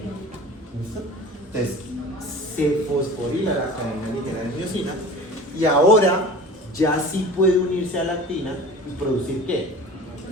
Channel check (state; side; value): normal; both; correlation 0.39